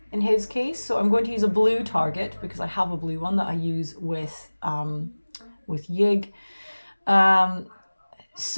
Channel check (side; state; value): both; inverted; correlation -1.00